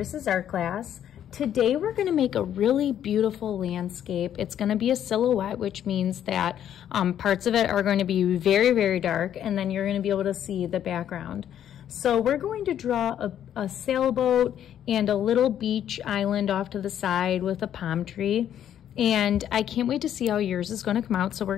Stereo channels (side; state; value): right; quieter; 10.3 dB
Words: art class. Today we're going to make a really beautiful landscape. It's going to be a silhouette, which means that parts of it are going to be very, very dark, and then you're going to be able to see the background. So we're going to draw a sailboat and a little beach island off to the side with a palm tree. And I can't wait to see how yours is going to come out. So